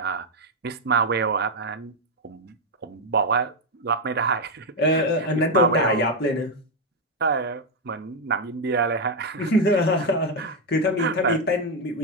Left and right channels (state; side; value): normal; both; correlation 0.04